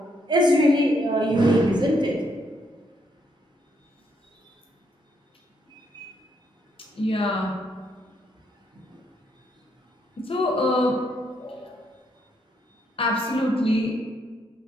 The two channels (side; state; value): both; normal; correlation 0.75